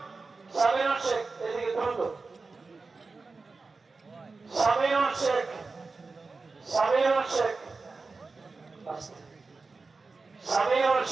শেখ, এদিকে দ্রুত সামিরুল শেখকে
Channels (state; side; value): quieter; left; 4.0 dB